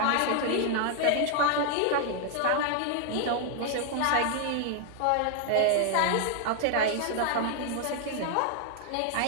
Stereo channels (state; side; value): different; both; correlation 0.00